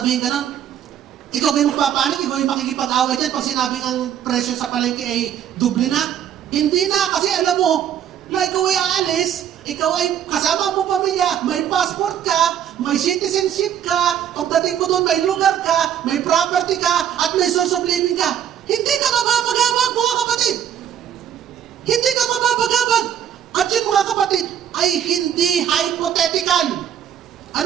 ganun, ikaw ba yung magpapanik? Ikaw yung makikipag-away dyan pag sinabing ang presyo sa palengke ay doble na? Hindi na, kasi alam mo, na ikaw ay aalis, ikaw ay kasama mo pamilya, may passport ka, may citizenship ka, pagdating mo doon, may lugar ka, may property ka, at may source of living ka. Hindi ka mababagabag, mga kapatid. Hindi ka mababagabag. At yun, mga kapatid, ay hindi hypothetical.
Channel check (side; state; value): left; quieter; 9.7 dB